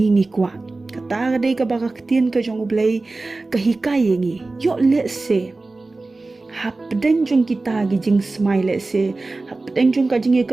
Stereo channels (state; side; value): quieter; left; 3.4 dB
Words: ngi kwa kata ka dei ka baka tin ka jong ublei ka hikai ngi yo le se hap den jong kita gi jing smile se hap den jong ka jing e